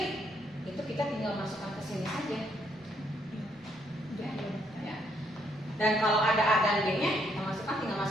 itu kita tinggal masukkan ke sini aja. Ya. Dan kalau ada A dan B-nya, kita tinggal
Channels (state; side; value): normal; both; correlation 0.71